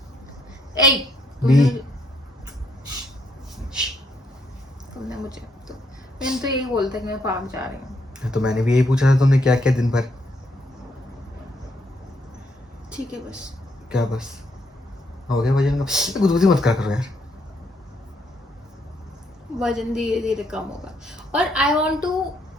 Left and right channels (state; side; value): normal; both; correlation 0.74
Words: ए, बी। तुमने मुझे तो मैंने तो यही बोलता कि मैं पार्क जा रही हूँ। तो मैंने भी यही पूछा था तुमने क्या किया दिन भर। ठीक है बस। क्या बस? हो गया वजन का? गुदगुदी मत करा करो यार। वजन धीरे धीरे कम होगा। और आई वॉन्ट टू,